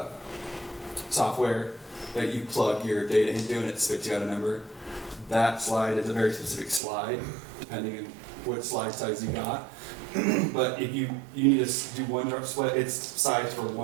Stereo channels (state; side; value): drops out; left; at 6.8 s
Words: software that you plug your data into and it spits you out a number, that slide is a very specific slide, depending on what slide size you got. But if you need to do one drop split, it's sized for